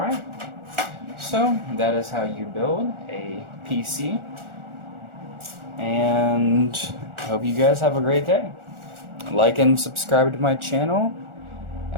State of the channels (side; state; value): left; late; 1.4 ms